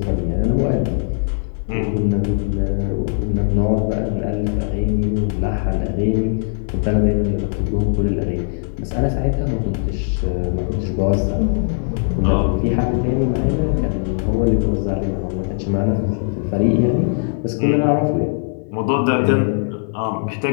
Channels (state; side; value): silent; right; 62 dB below the other